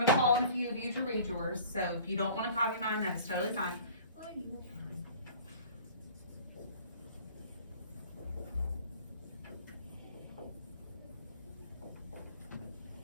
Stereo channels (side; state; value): both; inverted; correlation -0.46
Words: to call on a few of you to read yours. So if you don't want to copy mine, that's totally fine.